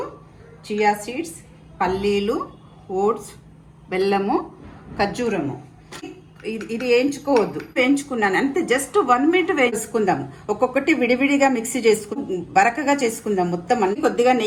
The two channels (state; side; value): identical; both; correlation 1.00